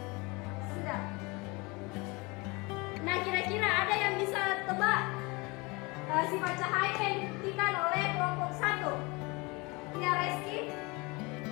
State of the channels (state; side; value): quieter; right; 26.2 dB